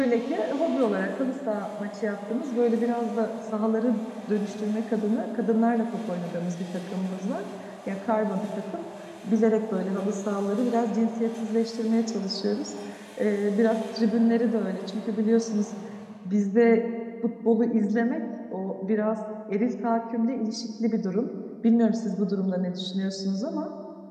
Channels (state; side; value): identical; both; correlation 1.00